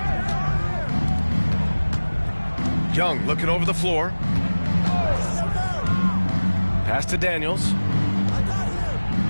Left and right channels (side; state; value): both; inverted; correlation -1.00